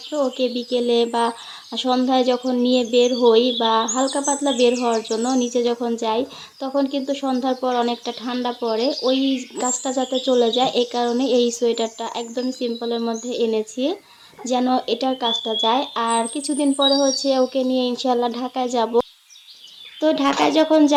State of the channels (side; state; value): both; identical; correlation 1.00